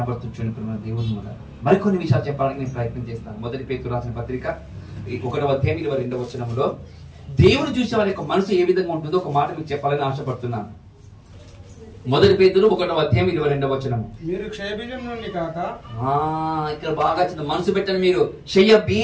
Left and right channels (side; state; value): both; identical; correlation 1.00